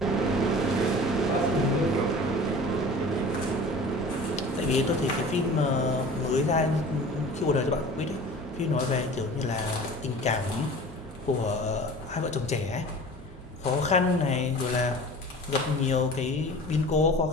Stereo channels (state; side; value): normal; both; correlation 0.40